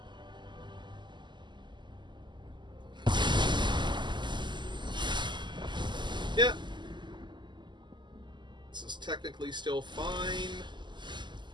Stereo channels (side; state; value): left; late; 0.22 ms